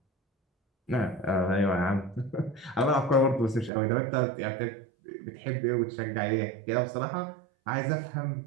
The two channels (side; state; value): left; drops out; at 3.7 s